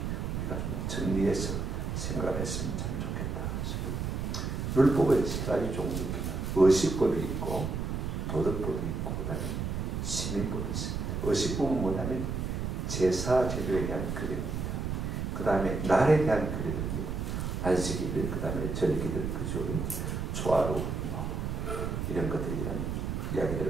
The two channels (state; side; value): noise; right; rumble, 2 dB below the sound